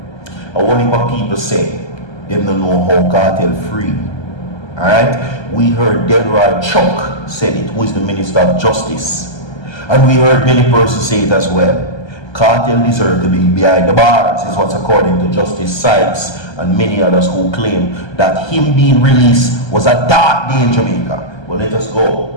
And only what people say, they don't know how Kartel free. Alright? We heard Delroy Chuck said it, who is the Minister of Justice. And we heard many persons say it as well. Kartel deserved to be behind the bars, is what's according to Justice Sykes and many others who claim that him being released was a dark day in Jamaica. But let us go.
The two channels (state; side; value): late; right; 1.3 ms